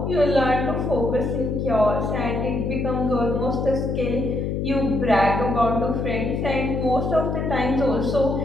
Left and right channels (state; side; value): noise; left; hum, 1 dB below the sound